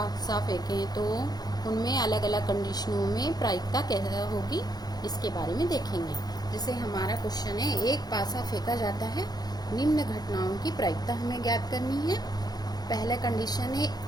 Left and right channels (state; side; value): late; right; 0.19 ms